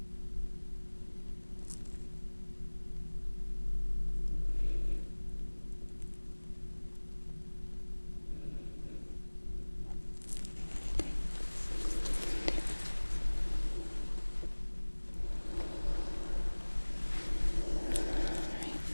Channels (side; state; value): both; inverted; correlation -1.00